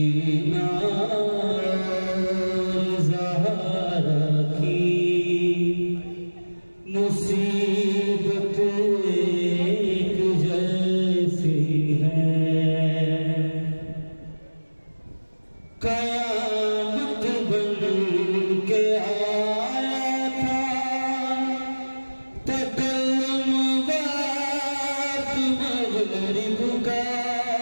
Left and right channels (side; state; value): both; inverted; correlation -1.00